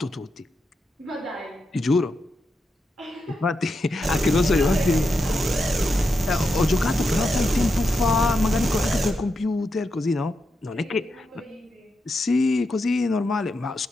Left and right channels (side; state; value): both; normal; correlation 0.86